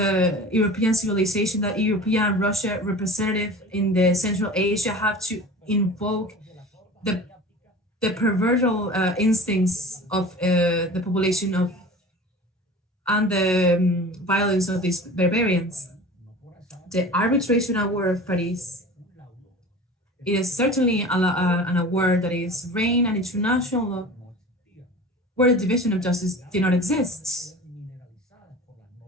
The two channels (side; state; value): both; normal; correlation 0.38